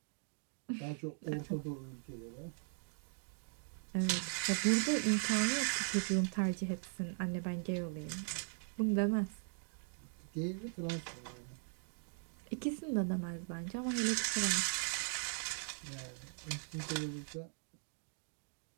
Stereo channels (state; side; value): silent; left; 51 dB below the other